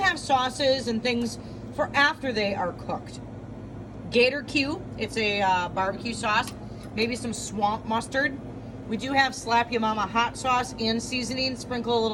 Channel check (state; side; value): identical; both; correlation 1.00